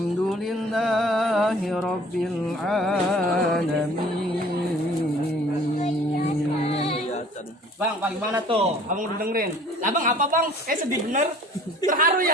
لله رب العالمين. Bang, bagaimana tuh? Abang udah dengerin? Lah bang, apa bang? Sedih bener. Terharu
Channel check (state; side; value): normal; both; correlation 0.51